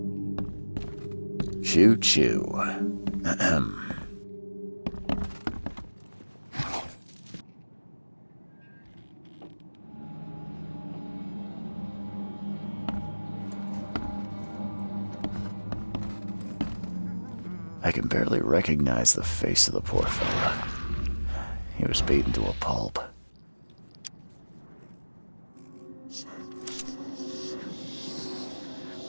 Choo choo. Ahem. I can barely recognize the face of the poor fella. He was beaten to a pulp.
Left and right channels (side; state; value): both; inverted; correlation -1.00